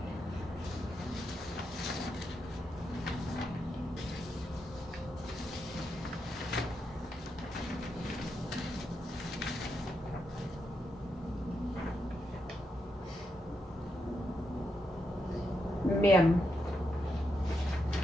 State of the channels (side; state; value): both; normal; correlation 0.83